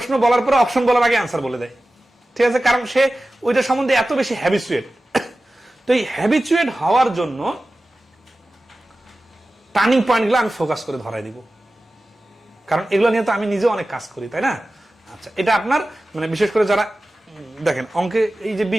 বলার পরে অপশন বলার আগে অ্যান্সার বলে দেয়। ঠিক আছে, কারণ সে ওইটা সম্বন্ধে এত বেশি হ্যাবিচুয়েট। তো এই হ্যাবিচুয়েট হওয়ার জন্য টার্নিং পয়েন্টগুলো আমি ফোকাস করে ধরাই দিব, কারণ এগুলো নিয়ে তো আমি নিজে অনেক কাজ করি, তাই না? আচ্ছা, এটা আপনার মানে বিশেষ করে যারা দেখেন অঙ্কে এই যে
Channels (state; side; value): normal; both; correlation 0.95